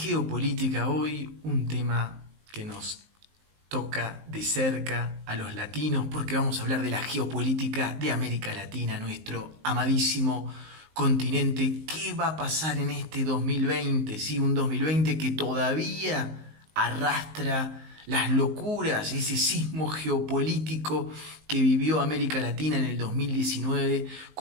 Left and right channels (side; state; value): left; late; 19 ms